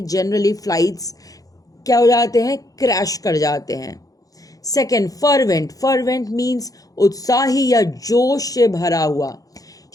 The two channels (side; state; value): right; late; 0.17 ms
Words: जनरली फ्लाइट्स क्या हो जाते हैं, क्रैश कर जाते हैं. सेकेंड फर्वेंट मीन्स उत्साही या जोश से भरा हुआ.